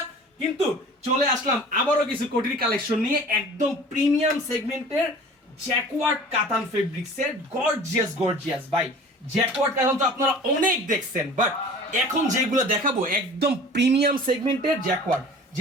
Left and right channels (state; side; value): normal; both; correlation 0.44